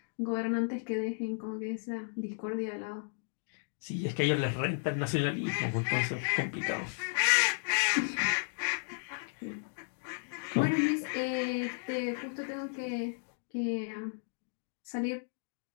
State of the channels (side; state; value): right; silent; digital silence